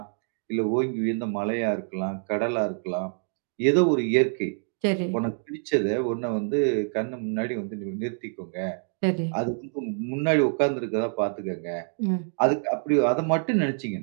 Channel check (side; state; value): left; silent; 60 dB below the other